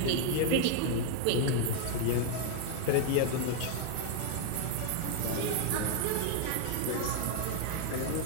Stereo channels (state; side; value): different; both; correlation 0.00